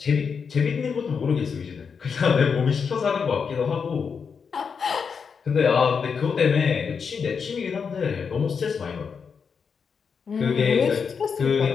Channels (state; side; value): quieter; right; 6.0 dB